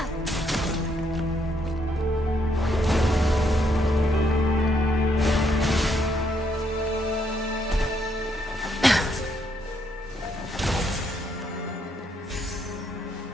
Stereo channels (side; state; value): both; normal; correlation 0.74